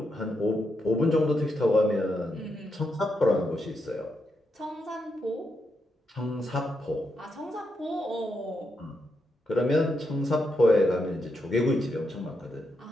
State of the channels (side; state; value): both; normal; correlation 0.82